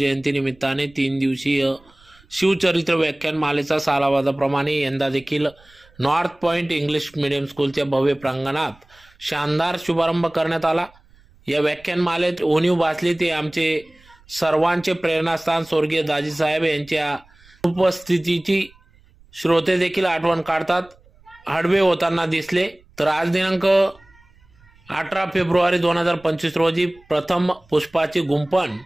निमित्ताने 3 दिवसीय शिवचरित्र व्याख्यानमालेचा सालाबादाप्रमाणे यंदा देखील नॉर्थ पॉइंट इंग्लिश मीडियम स्कूलच्या भव्य प्रांगणात शानदार शुभारंभ करण्यात आला। या व्याख्यानमालेत उणीव भासली ते आमचे सर्वांचे प्रेरणास्थान स्वर्गीय दाजीसाहेब यांच्या उपस्थितीची श्रोते देखील आठवण काढतात हडवे होताना दिसले। तर आज दिनांक 18 फेब्रुवारी 2025 रोजी प्रथम पुष्पाची गुंफण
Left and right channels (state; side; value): noise; right; rumble, 29 dB below the sound